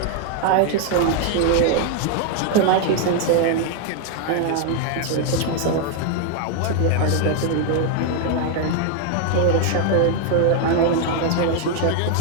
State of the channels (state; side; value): different; both; correlation 0.00